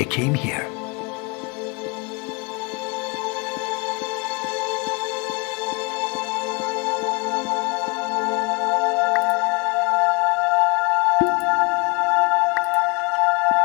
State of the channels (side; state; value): right; quieter; 30.1 dB